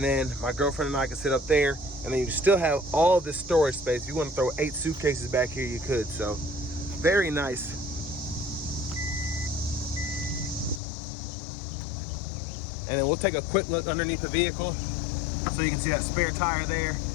then my girlfriend and I could sit up there, and then you still have all this storage space. If you want to throw 8 suitcases back here, you could. So very nice. And then we'll take a quick look underneath the vehicle so you can see that spare tire there,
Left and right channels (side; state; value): right; drops out; at 10.8 s